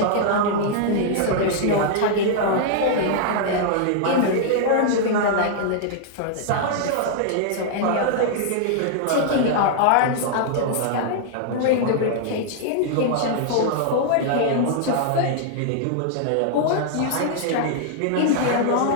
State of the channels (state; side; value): different; both; correlation -0.01